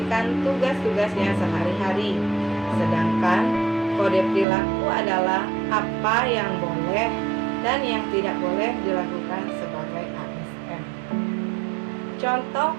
tugas-tugasnya sehari-hari. Sedangkan kode perilaku adalah apa yang boleh dan yang tidak boleh dilakukan sebagai ASN. Contoh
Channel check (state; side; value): drops out; left; at 4.5 s